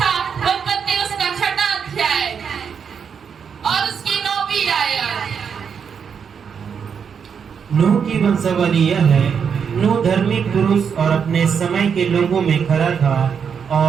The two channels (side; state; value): left; quieter; 6.9 dB